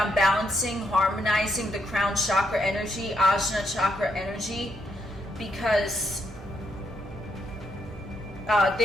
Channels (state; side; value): normal; both; correlation 0.77